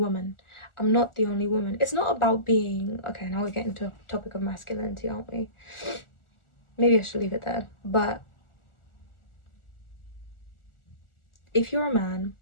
I'm not the only woman. It's not about being, okay, now we're getting to a topic of masculinity, aren't we? Maybe I should leave it there. But if you're a man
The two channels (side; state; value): right; late; 1.4 ms